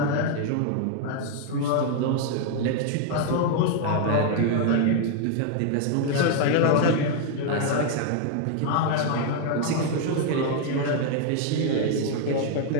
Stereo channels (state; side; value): different; both; correlation 0.00